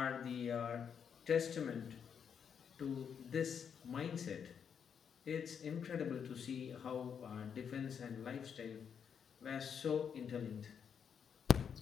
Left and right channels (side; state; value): right; quieter; 7.3 dB